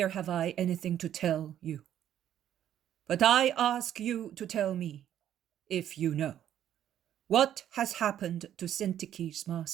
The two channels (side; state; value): left; quieter; 10.9 dB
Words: have I anything to tell you. But I ask you to tell me, if you know, what has happened to Syntyche's